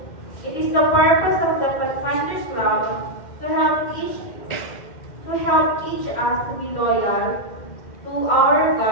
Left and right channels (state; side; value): late; right; 2.1 ms